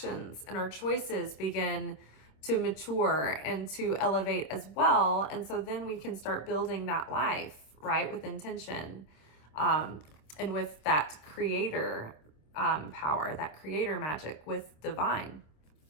and our choices begin to mature and to elevate as well. And so then we can start building that life, right, with intention. And with that creator power, that creator magic with divine.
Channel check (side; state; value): right; late; 26 ms